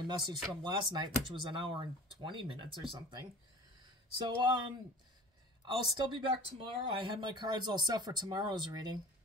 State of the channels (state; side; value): normal; both; correlation 0.42